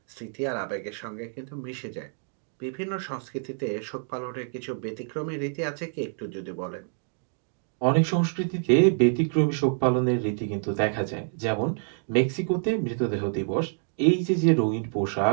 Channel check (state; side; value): silent; left; 60 dB below the other